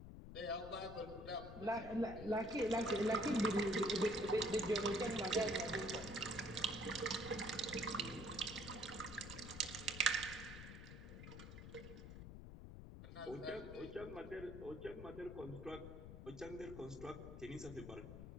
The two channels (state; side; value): noise; left; rumble, 11 dB below the sound